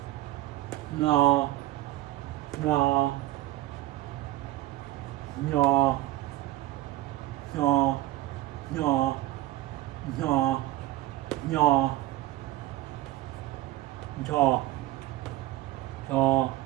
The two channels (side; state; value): left; quieter; 16.4 dB